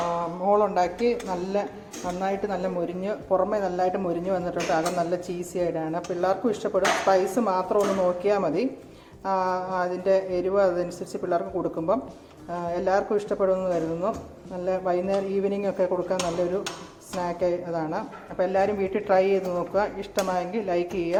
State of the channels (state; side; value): identical; both; correlation 1.00